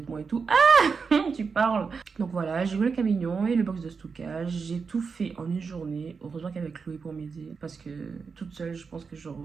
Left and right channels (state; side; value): quieter; left; 5.3 dB